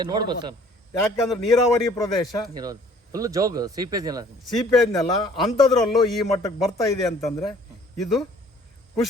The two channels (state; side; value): normal; both; correlation 0.55